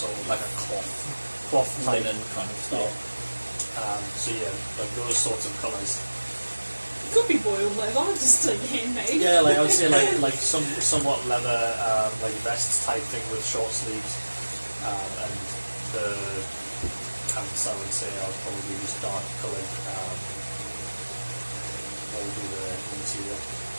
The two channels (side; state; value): both; inverted; correlation -1.00